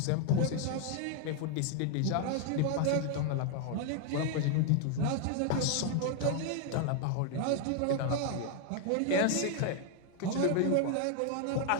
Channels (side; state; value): both; different; correlation 0.00